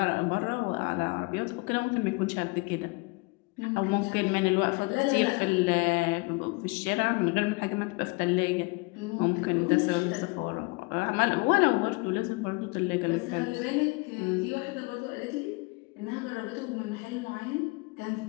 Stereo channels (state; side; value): quieter; right; 27.9 dB